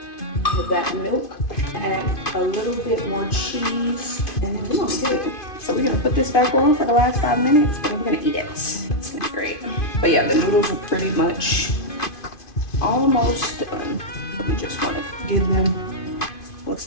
of that milk. Add a little bit more cheese, and then we're gonna be good. So we're gonna put this back on for the last 5 minutes, and we're gonna eat it. It's gonna be great. But yeah, the noodles are pretty much almost done. We just wanna give them, looks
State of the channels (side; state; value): right; late; 2.5 ms